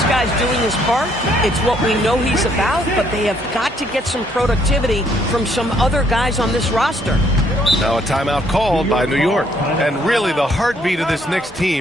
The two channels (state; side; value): normal; both; correlation 0.67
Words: guy's doing his part. It's what we know he's about, but they have got to get some productivity from some other guys on this roster. Now a timeout called by New York. And really the heartbeat of this Knicks